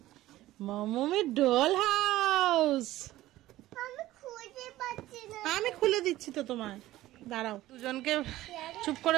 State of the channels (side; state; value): left; quieter; 15.8 dB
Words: মামুমির ডল হাউস। আমি খুলে দিচ্ছি তো তোমায়, দাঁড়াও। দুজনকে চুপ